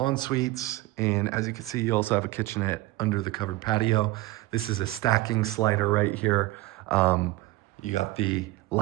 And as you can see, you also have a kitchenette under the covered patio. This is a stacking slider right here. You got the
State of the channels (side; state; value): left; quieter; 18.7 dB